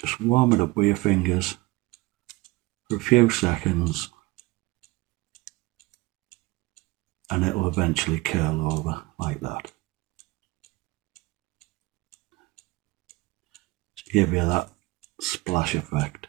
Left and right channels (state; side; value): quieter; left; 21.7 dB